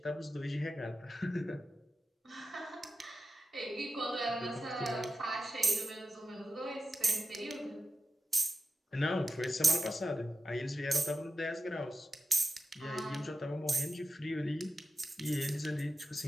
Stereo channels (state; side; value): normal; both; correlation 0.89